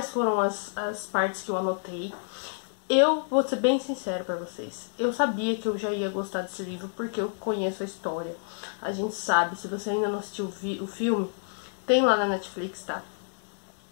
foram as partes que eu anotei. Eu vou ser bem sincero pra vocês, eu sabia que eu já ia gostar desse livro porque eu conheço a história. A gente sabe, se você ainda não assistiu o filme, tem lá na Netflix, tá?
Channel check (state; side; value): silent; right; digital silence